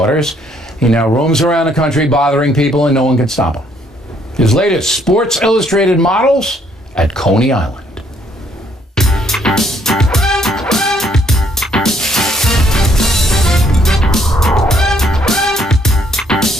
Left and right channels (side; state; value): both; normal; correlation 0.67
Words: He now roams around the country bothering people, and no one can stop him. His latest Sports Illustrated models at Coney Island.